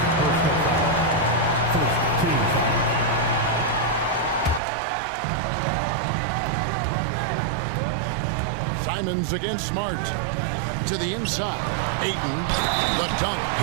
Simons against Smart. To the inside. Ayton, the dunk,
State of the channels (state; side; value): drops out; left; at 4.6 s